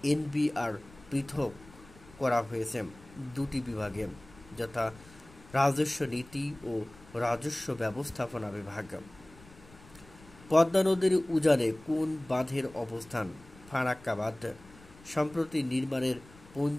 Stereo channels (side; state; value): left; noise; rumble, 23 dB below the sound